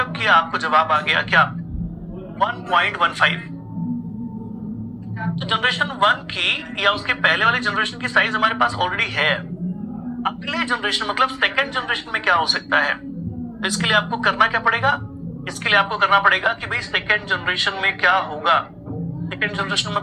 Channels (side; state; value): both; identical; correlation 1.00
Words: किया, आपको जवाब आ गया क्या 1.15। तो जनरेशन 1 की या उसके पहले वाले जनरेशन की साइज हमारे पास ऑलरेडी है। अगले जनरेशन मतलब सेकंड जनरेशन में क्या हो सकता है, तो इसके लिए आपको करना क्या पड़ेगा, इसके लिए आपको करना पड़ेगा कि भाई सेकंड जनरेशन में क्या होगा। सेकंड जनरेशन